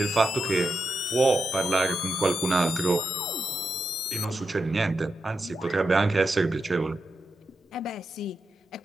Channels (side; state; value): both; normal; correlation 0.87